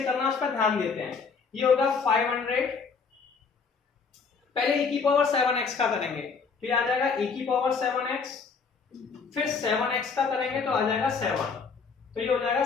करना है उस पर ध्यान देते हैं। ये होगा 500, पहले e की पावर 7x का करेंगे, फिर आ जाएगा e की पावर 7x, फिर 7x का करेंगे तो आ जाएगा 7, तो ये हो जाएगा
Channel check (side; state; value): right; quieter; 5.3 dB